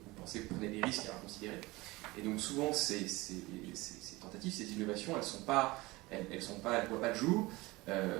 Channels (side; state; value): left; quieter; 21.5 dB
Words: pensez que vous prenez des risques à considérer. Et donc souvent, ces tentatives, ces innovations, elles ne voient pas le jour,